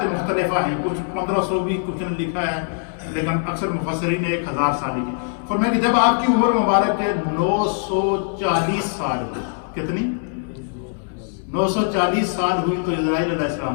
مختلفہ ہیں، کچھ 1500 بھی کچھ نے لکھا ہے، لیکن اکثر مفسرین نے 1000 سال لکھی۔ فرمایا کہ جب آپ کی عمر مبارک کے 940 سال ہوئی، کتنی؟ 940 سال ہوئی تو اسرائیل علیہ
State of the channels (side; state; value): right; silent; 63 dB below the other